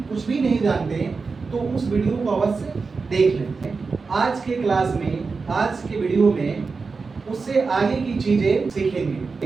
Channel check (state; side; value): quieter; left; 4.5 dB